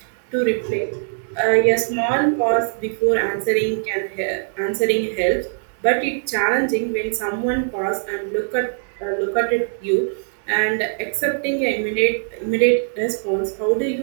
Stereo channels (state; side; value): silent; left; digital silence